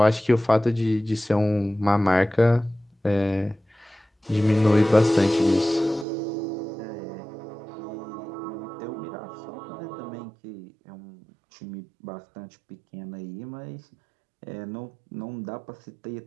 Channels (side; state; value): left; drops out; at 6.1 s